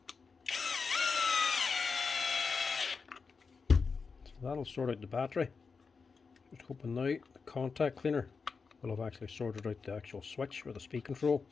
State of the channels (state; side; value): quieter; right; 5.0 dB